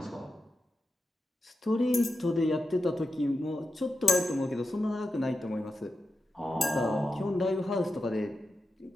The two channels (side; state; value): both; normal; correlation 0.89